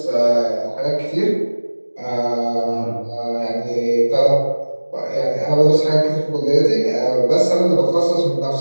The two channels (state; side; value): inverted; both; correlation -1.00